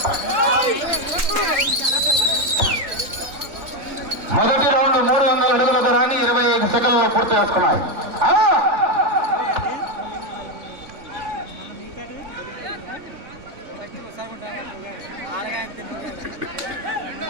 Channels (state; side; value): late; left; 3.6 ms